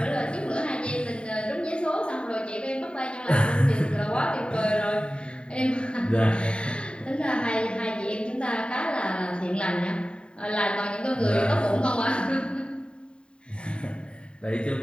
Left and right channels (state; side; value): late; right; 0.052 ms